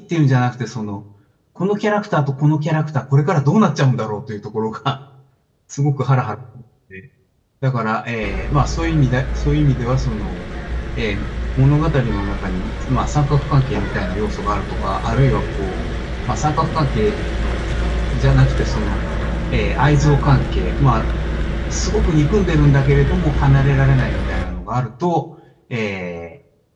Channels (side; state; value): both; identical; correlation 1.00